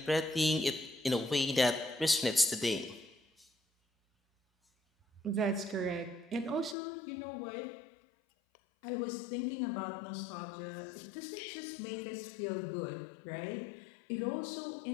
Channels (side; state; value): right; drops out; at 6.8 s